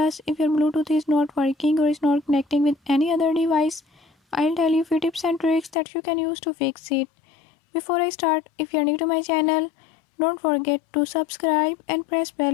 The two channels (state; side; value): drops out; right; at 5.8 s